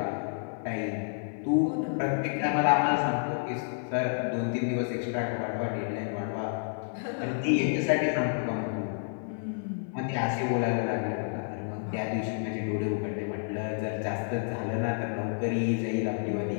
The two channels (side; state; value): right; silent; 58 dB below the other